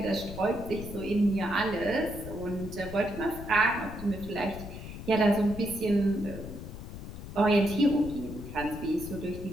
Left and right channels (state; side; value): noise; left; rumble, 11 dB below the sound